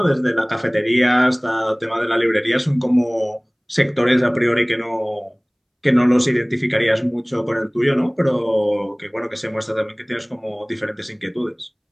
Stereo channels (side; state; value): both; identical; correlation 1.00